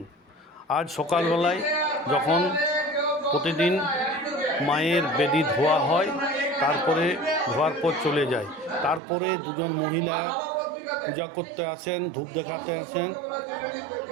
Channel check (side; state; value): left; drops out; at 9.0 s